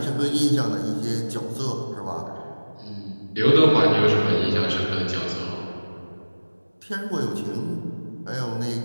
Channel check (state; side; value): inverted; both; correlation -1.00